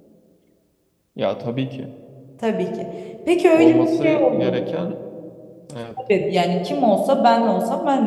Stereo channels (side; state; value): both; identical; correlation 1.00